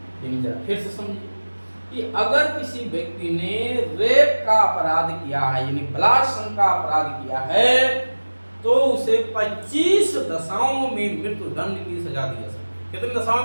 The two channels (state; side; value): inverted; both; correlation -1.00